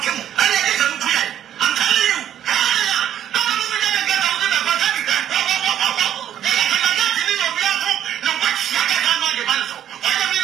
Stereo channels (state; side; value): quieter; left; 10.6 dB